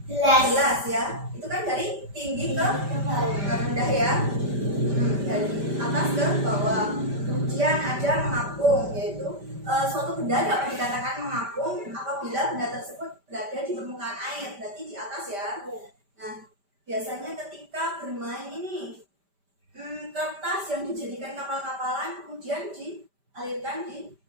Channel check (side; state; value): left; late; 5.1 ms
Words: gelas ya, itu kan dari tinggi ke rendah ya, dari atas ke bawah. Kemudian ada mengapung, yaitu suatu benda dapat dikatakan mengapung apabila benda tersebut berada di permukaan air, berarti di atas ya. Nah, biasanya ketika bermain ini kertas yang dijadikan kapal-kapalan kemudian dialirkan di